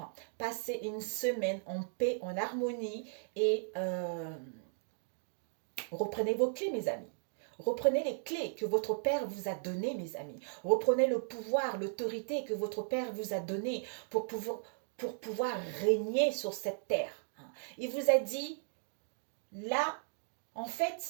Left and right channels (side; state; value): left; silent; digital silence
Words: Passez une semaine en paix, en harmonie et... reprenez vos clés, mes amis. Reprenez les clés que votre Père vous a données, mes amis. Reprenez le pouvoir, l'autorité que votre Père vous a donnée pour pouvoir régner sur cette terre. Il vous a dit, là, en